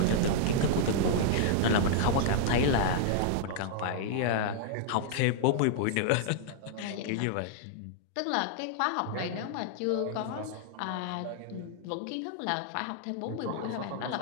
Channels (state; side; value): different; both; correlation -0.01